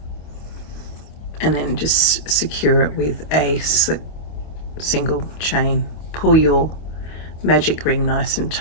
and then just secure it with a slip single chain. Pull your magic ring nice and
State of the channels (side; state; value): right; late; 25 ms